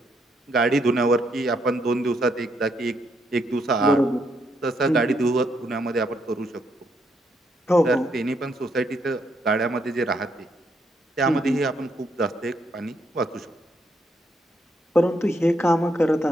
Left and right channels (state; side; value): normal; both; correlation 0.75